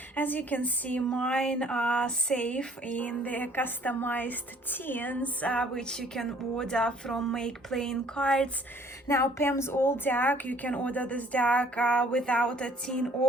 As you can see, mine are safe in the customized tins, which you can order from Make Playing Cards. Now Pam's old deck, you can order this deck without a tin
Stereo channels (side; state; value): both; normal; correlation 0.58